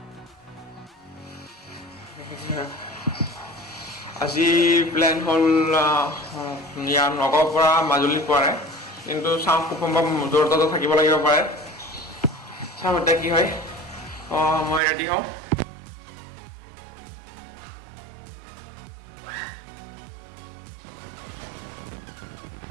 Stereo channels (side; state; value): left; drops out; at 14.8 s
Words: আজি প্লেন হ'ল ইয়াৰ নগাঁৱৰ পৰা মাজুলী পোৱাৰে কিন্তু চাওঁ খুব সম্ভৱ জৰহাটতো থাকিব লাগিব পাৰে চাওঁ এতিয়া কি হয় মই ৰেডি হওঁ